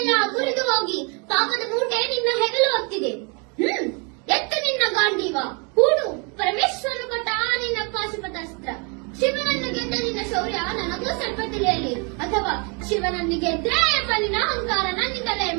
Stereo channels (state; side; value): quieter; left; 33.5 dB